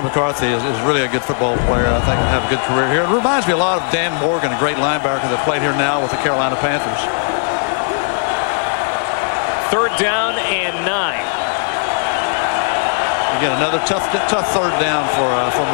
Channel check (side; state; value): right; silent; 59 dB below the other